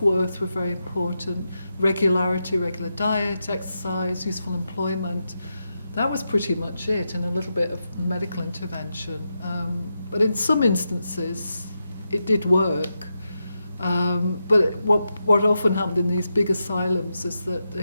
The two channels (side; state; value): both; inverted; correlation -0.87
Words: were very important. Regularity, regular diet, exercise, useful employment. That was pretty much it, and a little bit of medical intervention. But in some instances, it did work. But what often happened in these big asylums is that